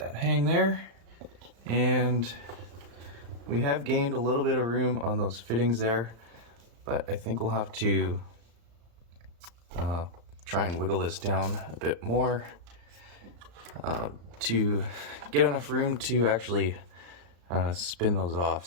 hang there. And we have gained a little bit of room on those fittings there, but I think we'll have to try and wiggle this down a bit more to get enough room to actually spin those off.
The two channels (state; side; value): late; left; 35 ms